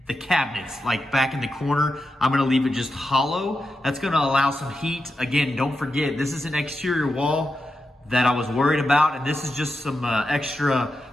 the cabinets, like back in the corner. I'm gonna leave it just hollow. That's gonna allow some heat. Again, don't forget, this is an exterior wall that I was worried about, and this is just some extra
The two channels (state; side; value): normal; both; correlation 0.88